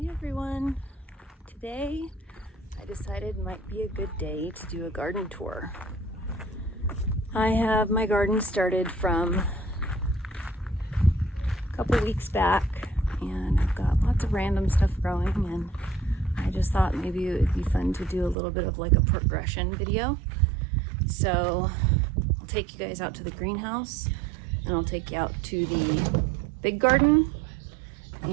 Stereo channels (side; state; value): left; drops out; at 18.4 s